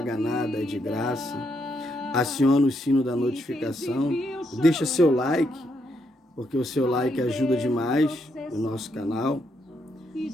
nada, é de graça. Aciona o sino da notificação. Deixa seu like, porque o seu like ajuda demais o nosso canal,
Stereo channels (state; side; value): normal; both; correlation 0.77